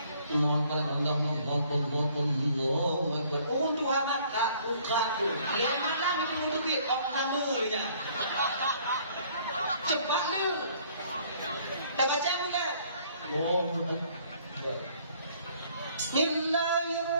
Allah. Untuk amat tak ukapu. Lihat malam itu menukit orang kamunya. Cepat lu. Tak baca mula.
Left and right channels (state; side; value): inverted; both; correlation -0.60